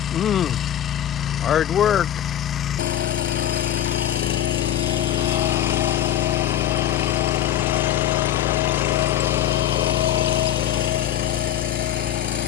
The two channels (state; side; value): quieter; right; 11.3 dB